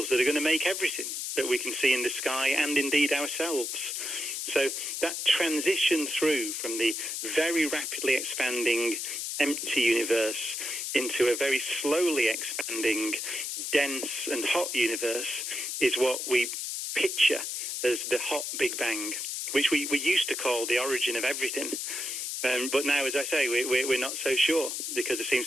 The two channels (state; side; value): noise; left; hiss, 4 dB below the sound